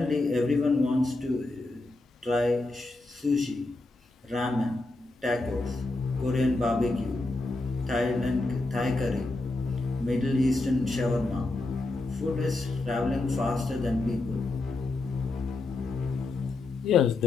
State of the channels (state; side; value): quieter; right; 3.0 dB